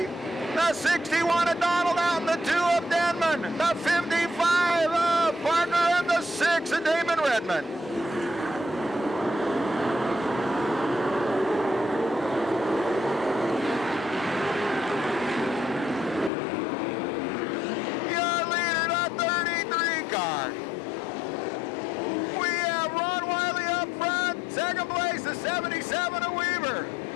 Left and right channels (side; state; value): right; drops out; at 16.3 s